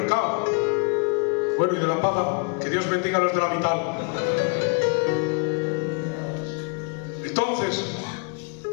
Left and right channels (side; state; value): right; quieter; 37.6 dB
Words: Bueno, y de la paga, que Dios bendiga a los de la mitad. Entonces,